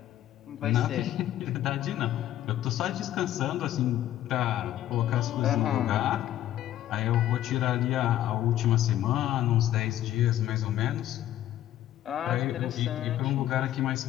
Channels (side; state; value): right; quieter; 12.7 dB